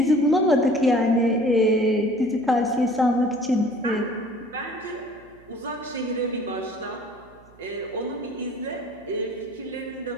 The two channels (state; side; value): noise; right; hum, 26 dB below the sound